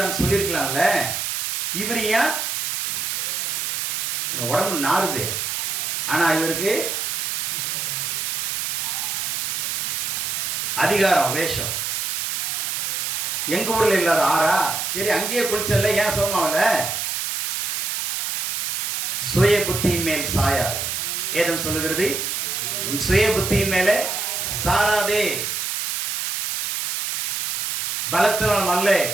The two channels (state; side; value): noise; right; hiss, 2 dB below the sound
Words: சொல்லியிருக்கலாம்ல. இவர் ஏன் உடம்பு நாறுது, ஆனா இவருக்கு அதிகாரம், வேஷம். எங்க ஊர்ல இல்லாத ஆறா? சரி அங்கேயே குளிச்சல, ஏன் சோமாவல? சுய புத்தியின் மேல் சாயாதே. ஏதும் சொல்லுகிறது, உன் சுய புத்தியின் மேலே சாராதே. பலத்தினாலும் அல்ல,